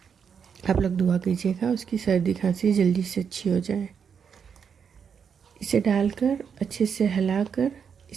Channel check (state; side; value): quieter; left; 6.9 dB